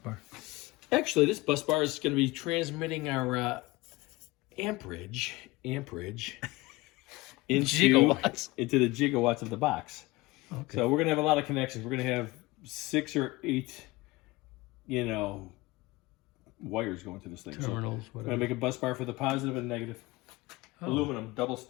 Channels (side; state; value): right; quieter; 21.5 dB